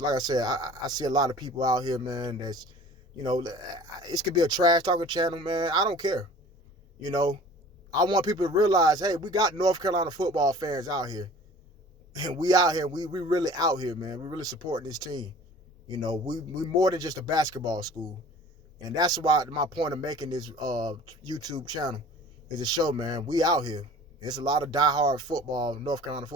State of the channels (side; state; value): both; normal; correlation 0.46